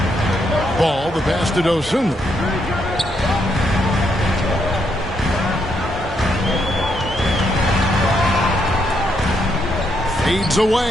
Ball, the pass to Dosunmu. Fades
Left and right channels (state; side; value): normal; both; correlation 0.77